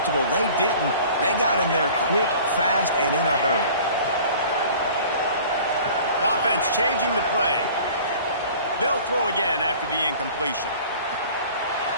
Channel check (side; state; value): both; inverted; correlation -0.46